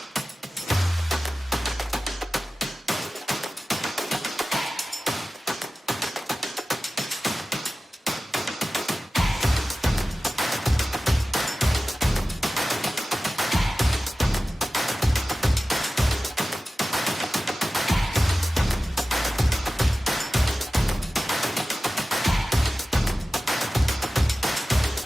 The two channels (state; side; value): normal; both; correlation 0.95